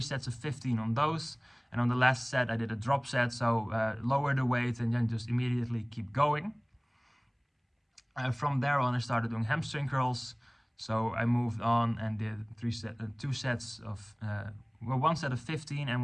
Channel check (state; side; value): identical; both; correlation 1.00